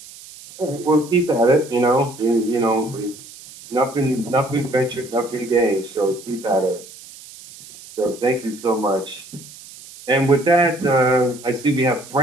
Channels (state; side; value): noise; right; hiss, 18 dB below the sound